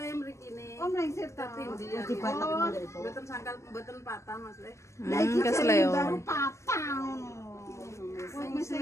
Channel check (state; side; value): late; right; 0.14 ms